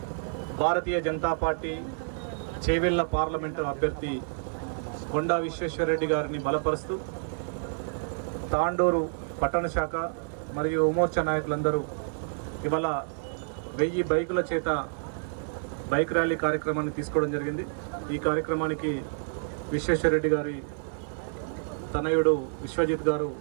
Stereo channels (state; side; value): silent; left; digital silence